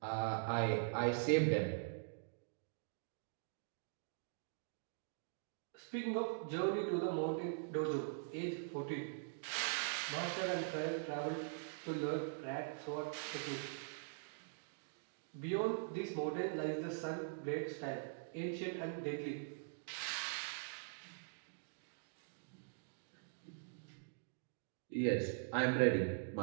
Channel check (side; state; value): left; silent; digital silence